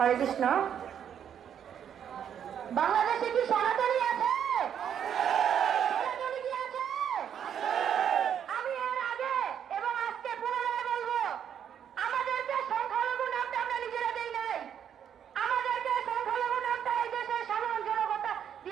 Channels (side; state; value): left; quieter; 8.9 dB